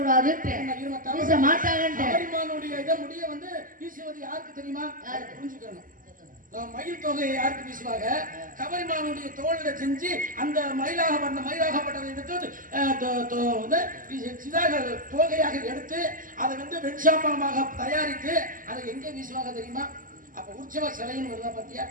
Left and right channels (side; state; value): left; late; 0.40 ms